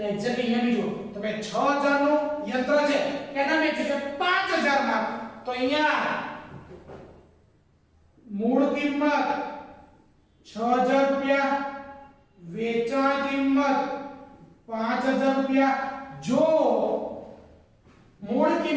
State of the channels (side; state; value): both; identical; correlation 1.00